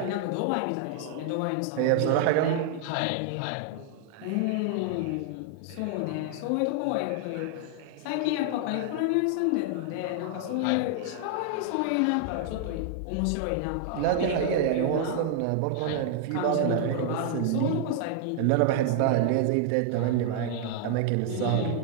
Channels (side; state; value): both; different; correlation 0.00